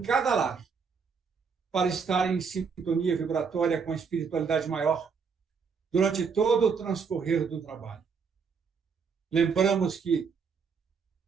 cada lar, para estar em sintonia vibratória com a espiritualidade maior durante todo o transcorrer do trabalho. Lembramos que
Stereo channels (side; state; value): left; quieter; 5.8 dB